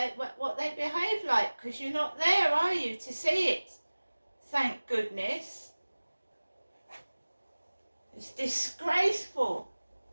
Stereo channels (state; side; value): inverted; both; correlation -1.00